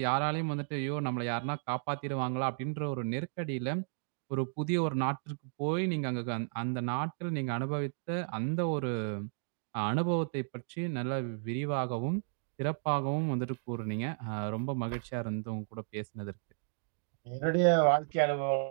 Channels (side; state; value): left; silent; digital silence